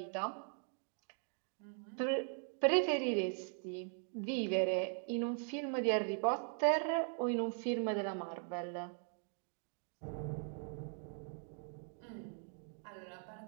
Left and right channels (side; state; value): left; silent; 51 dB below the other